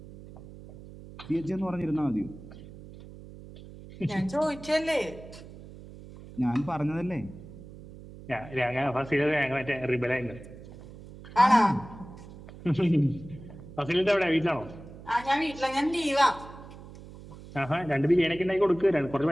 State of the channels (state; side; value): noise; right; hum, 16 dB below the sound